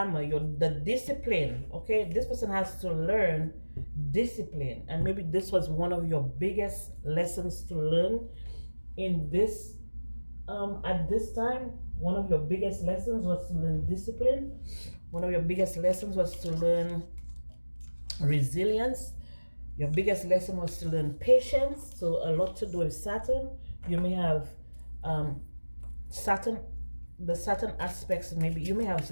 the discipline. Okay, this person has to learn discipline. And maybe this was one of your biggest lessons to learn in this, at this time. One of your biggest lessons was to learn discipline. One of your biggest lessons was to learn resilience. Your biggest lesson was to learn patience. So a lot to do with Saturn. You may have Saturn, the Saturn aspects, maybe you may have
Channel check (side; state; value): both; inverted; correlation -1.00